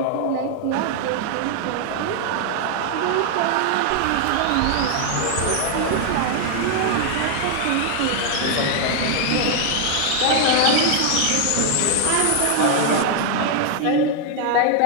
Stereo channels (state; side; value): different; both; correlation 0.00